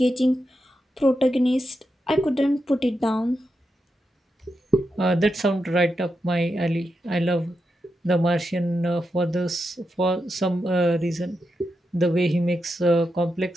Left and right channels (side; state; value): both; normal; correlation 0.86